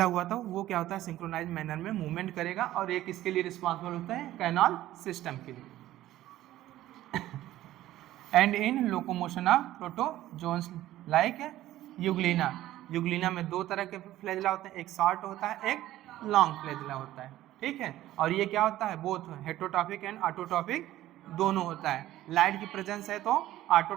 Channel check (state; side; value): quieter; left; 14.5 dB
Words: हुआ था, वो क्या होता है, सिंक्रोनाइज मैनर में मूवमेंट करेगा, और एक इसके लिए रिस्पॉन्सिबल होता है कैनाल सिस्टम के लिए। And in locomotion of protozoans like Euglena. Euglena में दो तरह के फ्लैजेला होते हैं, एक शॉर्ट होता है, एक लॉन्ग फ्लैजेला होता है, ठीक है। और ये क्या होता है, बोथ हेटरोट्रॉपिक एंड ऑटोट्रॉपिक दोनों होता है। लाइट की प्रेजेंस है तो